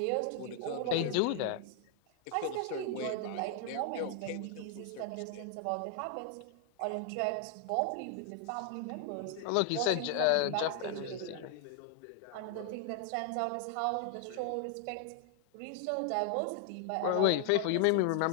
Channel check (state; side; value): different; both; correlation 0.00